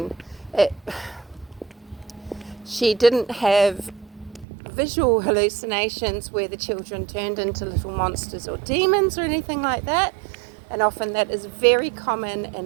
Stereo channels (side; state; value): left; drops out; at 4.5 s